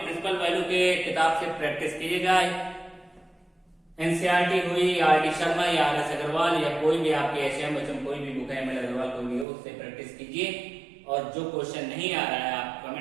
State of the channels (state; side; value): drops out; left; at 9.5 s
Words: प्रिंसिपल वैल्यू के किताब से प्रैक्टिस कीजिएगा। एनसीईआरटी हुई, आर डी शर्मा या आर एस अग्रवाल या कोई भी आपके एचएम कोई भी बुक है, एम एल अग्रवाल कोई भी हो, उससे प्रैक्टिस कीजिए। और जो क्वेश्चन नहीं आ रहा है आप